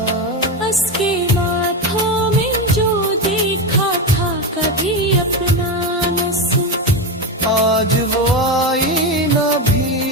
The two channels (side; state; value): both; normal; correlation 0.15